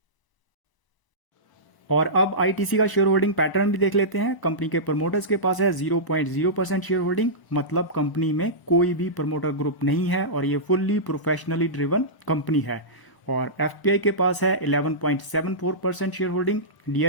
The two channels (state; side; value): late; right; 1.0 ms